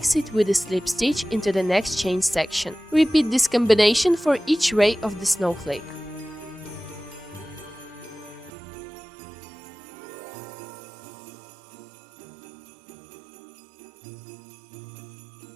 it with a slip stitch into the next chain section. Repeat this combination for each ray of the snowflake.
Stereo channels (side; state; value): left; drops out; at 8.5 s